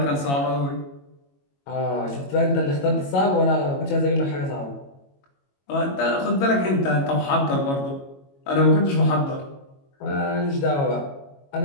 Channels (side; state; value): right; late; 22 ms